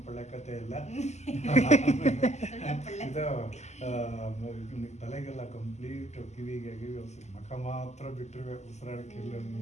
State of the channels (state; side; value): late; right; 0.33 ms